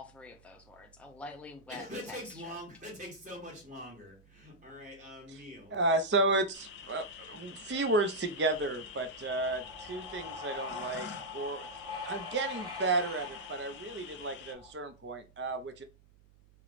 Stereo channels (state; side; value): noise; right; hum, 27 dB below the sound